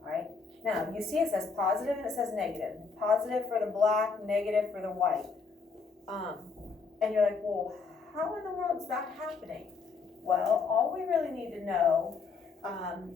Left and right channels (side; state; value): right; quieter; 4.9 dB